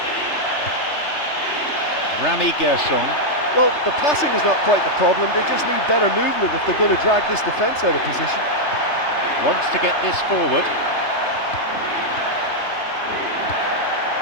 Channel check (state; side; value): late; right; 3.3 ms